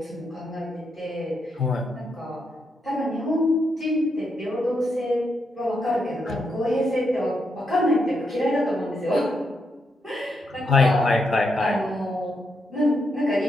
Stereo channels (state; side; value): normal; both; correlation 0.81